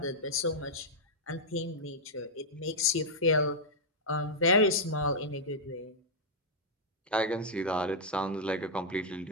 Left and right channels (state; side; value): normal; both; correlation -0.06